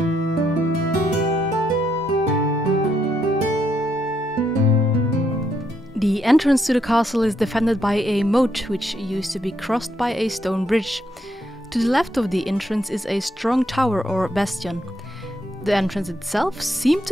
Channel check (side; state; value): both; normal; correlation 0.76